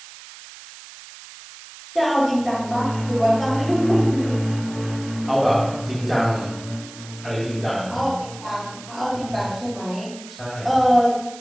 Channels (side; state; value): right; noise; hiss, 17 dB below the sound